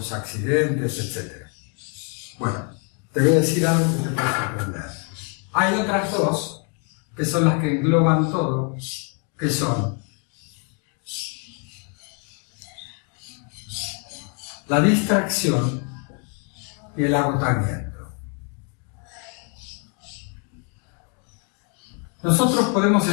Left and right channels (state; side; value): quieter; right; 38.7 dB